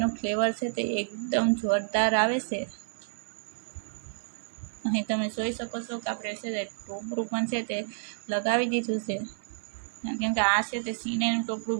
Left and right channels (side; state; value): left; silent; 58 dB below the other